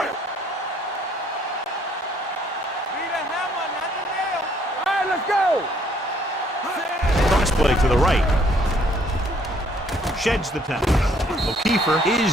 All right, let's go. Cross play to the right. Sheds the tackle. O'Keefer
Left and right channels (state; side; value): normal; both; correlation 0.64